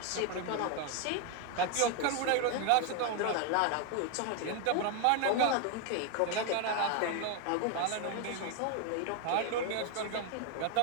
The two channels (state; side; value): different; both; correlation 0.01